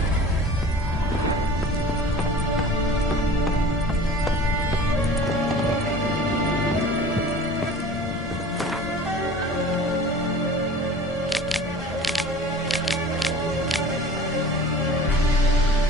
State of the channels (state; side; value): normal; both; correlation 0.41